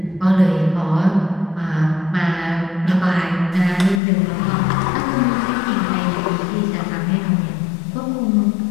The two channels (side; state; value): right; drops out; at 4.0 s